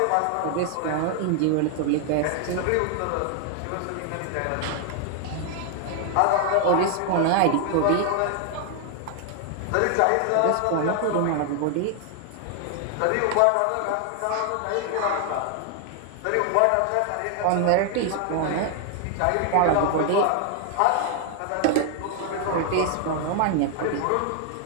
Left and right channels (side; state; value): both; different; correlation 0.00